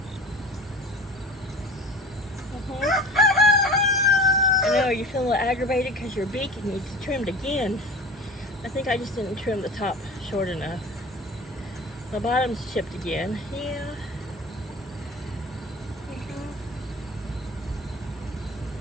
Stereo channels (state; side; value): normal; both; correlation 0.37